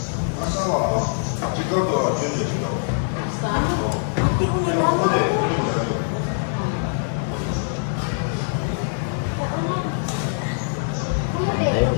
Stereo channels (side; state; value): right; silent; digital silence